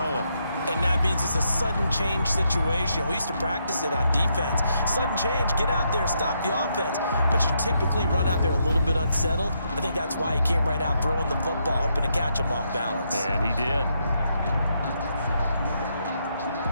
And that means it's a sudden change situation. We used to practice it on defense. Sudden change, get out there, stop the offense. But you typically run out there a little bit unsettled. I think that's why he came right out throwing the football, hoping to catch him off balance. And he did.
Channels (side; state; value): both; inverted; correlation -0.78